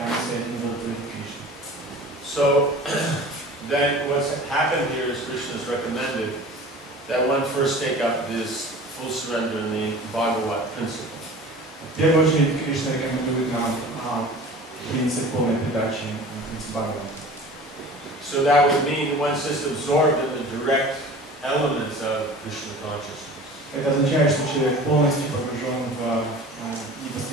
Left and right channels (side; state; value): both; normal; correlation 0.41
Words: удовлетворить Кришну. So, then what's happened here is Krishna has recommended that one first take up this full surrender in the Bhagavat principle. В первую очередь Кришна рекомендует нам принцип полной передачи, принцип Бхагавата. So that would mean one's just absorbed in the direct elements of Krishna consciousness. Это означает, что человек полностью погружен в